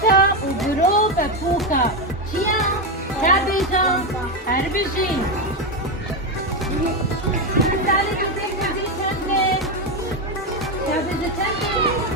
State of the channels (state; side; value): normal; both; correlation 0.10